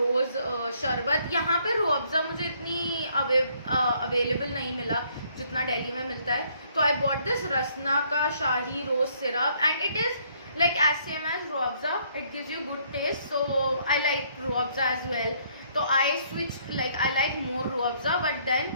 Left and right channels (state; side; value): inverted; both; correlation -0.66